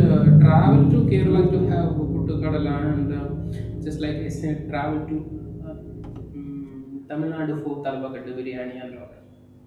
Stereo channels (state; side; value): identical; both; correlation 1.00